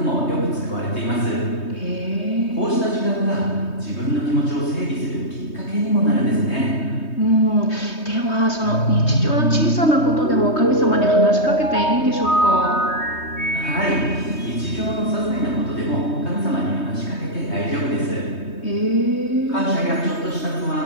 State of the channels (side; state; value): right; late; 3.2 ms